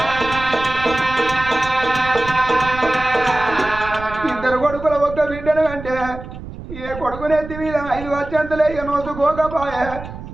ఇద్దరు కొడుకుల ఒక్క బిడ్డను అంటే ఏ కొడుకునెత్తి మీద 5 వచ్చంతలే నోసుకోకపోయే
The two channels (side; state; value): right; noise; rumble, 12 dB below the sound